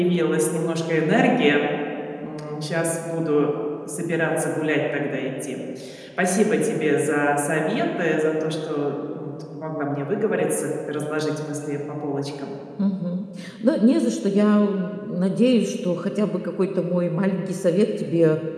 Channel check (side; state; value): both; identical; correlation 1.00